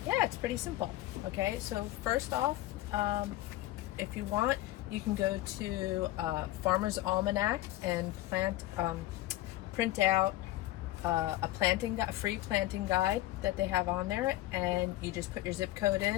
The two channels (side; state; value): right; quieter; 16.3 dB